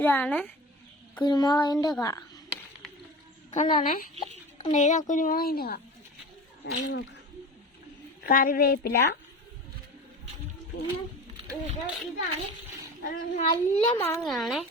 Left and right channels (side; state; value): both; normal; correlation 0.33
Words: കുരുമുളകിൻ്റെ കാ. കണ്ടോണേ, കണ്ടോ? ഇതാ കുരുമുളകിൻ്റെ കാ. നോക്കാം. കറിവേപ്പില. പിന്നെ ഇതാണ് നല്ല മാങ്ങയാണേ.